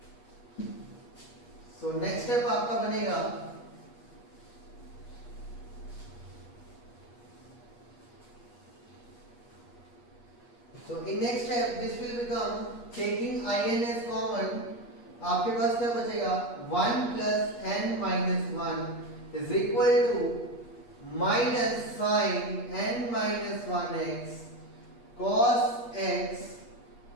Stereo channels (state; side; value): late; right; 8.4 ms